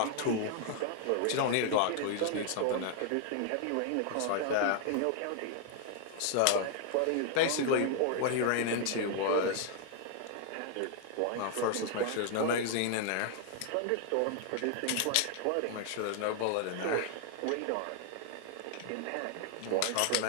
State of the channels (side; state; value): both; different; correlation 0.00